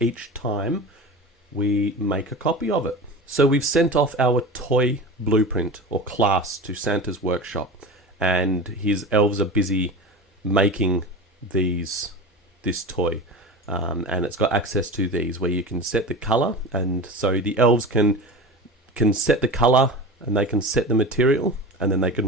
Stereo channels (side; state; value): both; normal; correlation 0.30